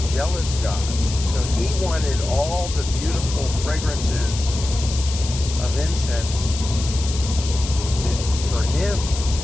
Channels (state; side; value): noise; left; hiss, 9 dB below the sound